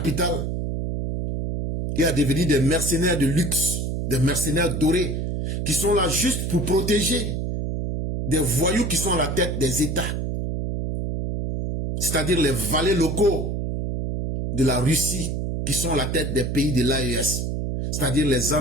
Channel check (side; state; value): right; noise; hum, 2 dB below the sound